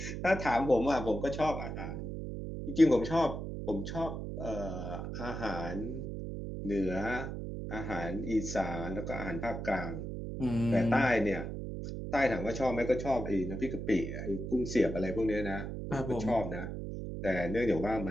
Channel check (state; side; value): noise; right; hum, 6 dB below the sound